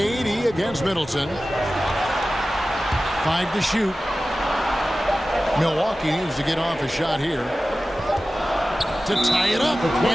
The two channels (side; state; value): both; normal; correlation 0.96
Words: against Middleton. 5 to shoot. Milwaukee needs to get off a shot here to tie it up,